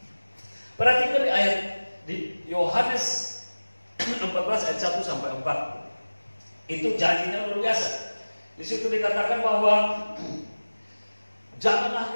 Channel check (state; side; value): inverted; both; correlation -1.00